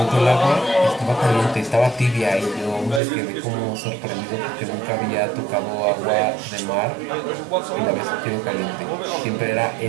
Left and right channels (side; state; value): left; drops out; at 3.0 s